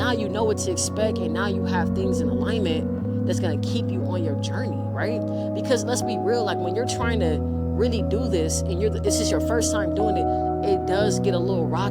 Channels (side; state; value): both; identical; correlation 1.00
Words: you know what to expect, and now you have things in alignment that's going to keep you on your journey, right? Because let's be real, like, when you're trying to really do this and this is your first time doing it, it does get a little